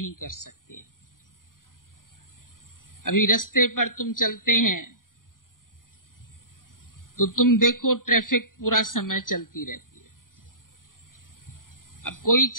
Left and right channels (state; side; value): late; right; 0.90 ms